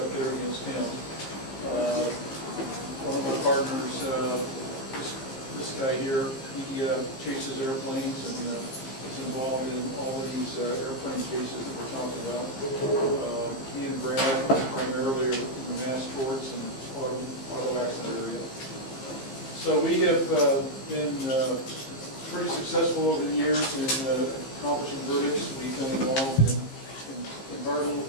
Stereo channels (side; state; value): right; late; 15 ms